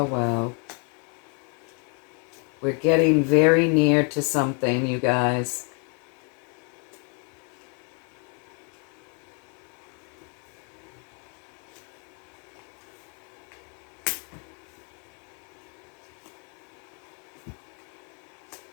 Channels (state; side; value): quieter; right; 37.5 dB